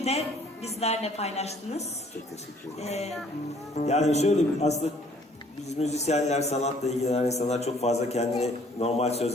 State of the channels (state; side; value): normal; both; correlation 0.59